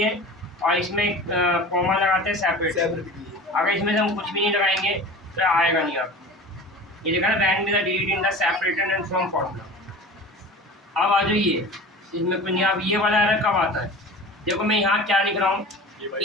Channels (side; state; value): both; normal; correlation 0.37